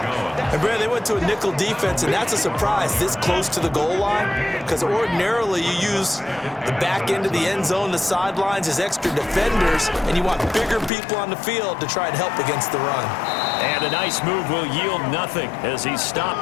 And, Brad, they went to a nickel defense, and that's a surprise this close to the goal line, because ordinarily you use the back end of the end zone, the sidelines as extra defenders, and you want bigger people on the field to try and help against the run. And a nice move will yield nothing as he's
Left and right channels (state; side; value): drops out; right; at 10.9 s